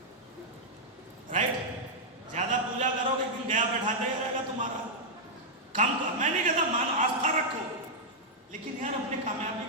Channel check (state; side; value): normal; both; correlation -0.06